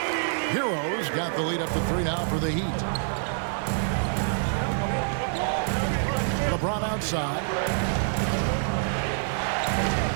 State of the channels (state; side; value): silent; left; 60 dB below the other